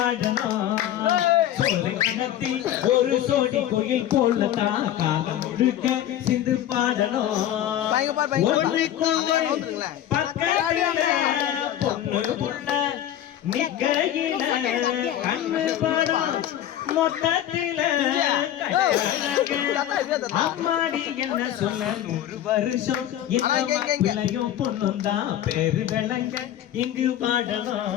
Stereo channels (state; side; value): quieter; right; 11.7 dB